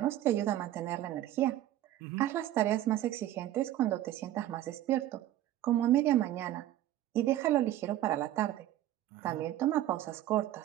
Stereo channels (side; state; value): left; quieter; 13.4 dB